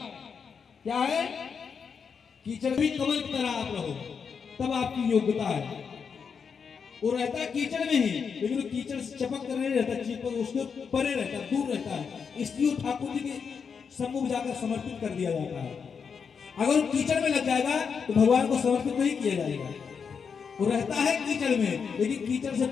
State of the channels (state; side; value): quieter; right; 6.2 dB